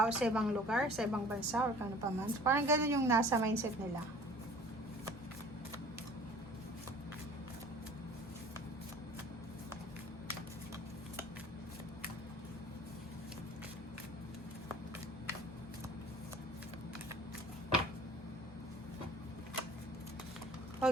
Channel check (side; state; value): both; normal; correlation 0.48